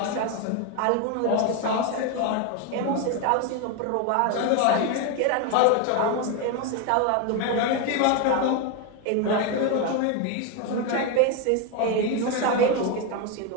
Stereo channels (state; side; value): different; both; correlation 0.02